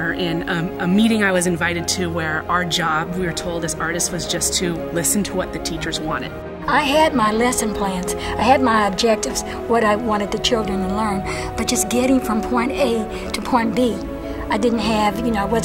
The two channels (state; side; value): identical; both; correlation 1.00